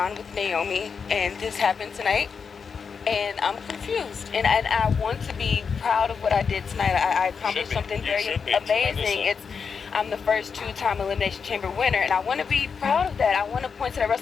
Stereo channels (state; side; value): quieter; right; 5.9 dB